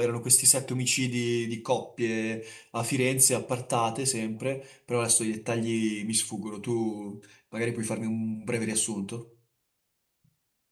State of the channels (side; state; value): both; identical; correlation 1.00